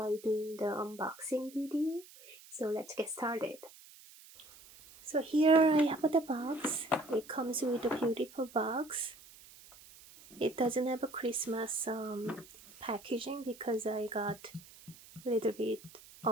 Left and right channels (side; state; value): right; noise; hiss, 21 dB below the sound